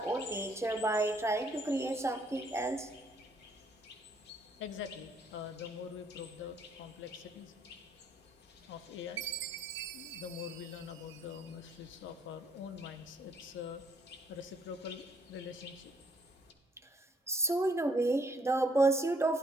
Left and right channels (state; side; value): normal; both; correlation 0.66